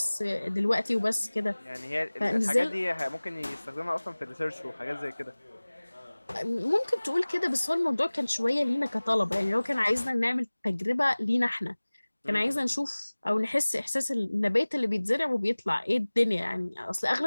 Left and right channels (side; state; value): both; inverted; correlation -1.00